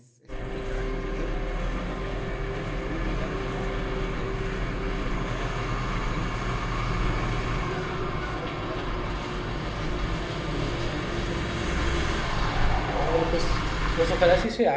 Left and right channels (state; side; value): identical; both; correlation 1.00